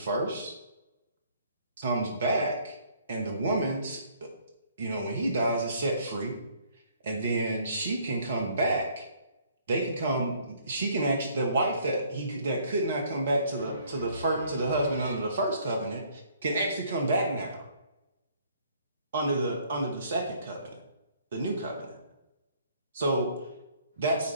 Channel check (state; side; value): inverted; both; correlation -0.62